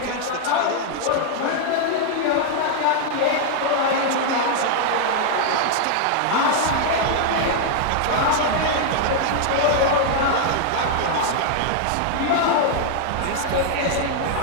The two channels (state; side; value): different; both; correlation 0.00